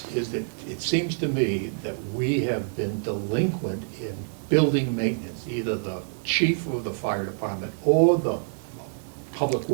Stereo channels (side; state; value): left; silent; 60 dB below the other